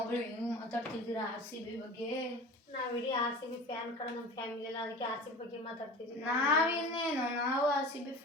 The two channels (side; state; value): both; normal; correlation 0.36